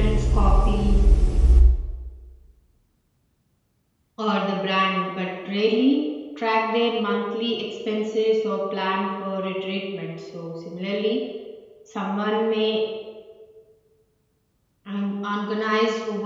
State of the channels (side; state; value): both; identical; correlation 1.00